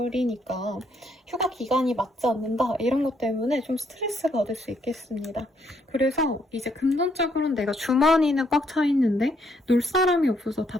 휴가 기간이 맞지 않는다. 이런 것 때문에 좀 스트레스 받을 수 있겠습니다. 그래서 이제 금전적으로는 내가 주머니는 꽉 차 있는데 놀 사람이 없어서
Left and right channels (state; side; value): normal; both; correlation 0.72